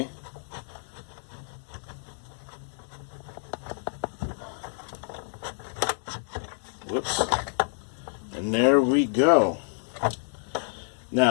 Whoops. And there we go.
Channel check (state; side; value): silent; right; digital silence